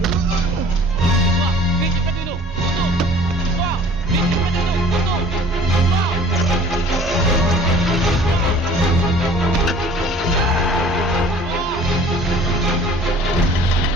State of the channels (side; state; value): both; normal; correlation 0.49